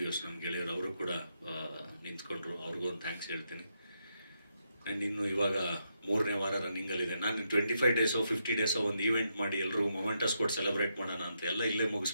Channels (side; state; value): both; inverted; correlation -0.80